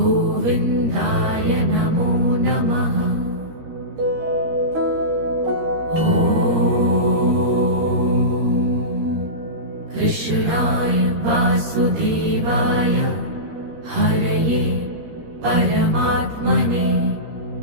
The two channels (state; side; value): late; left; 13 ms